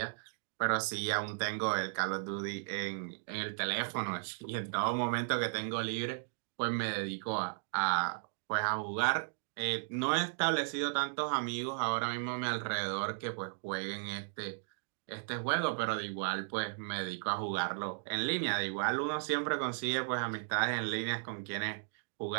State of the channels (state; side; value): silent; left; digital silence